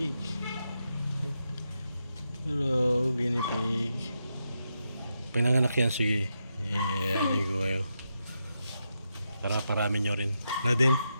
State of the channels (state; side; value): inverted; both; correlation -0.85